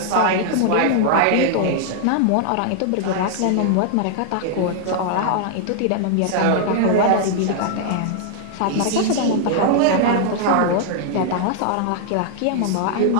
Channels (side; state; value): both; different; correlation -0.01